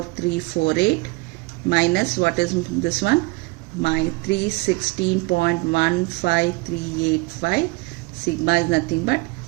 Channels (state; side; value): quieter; left; 25.7 dB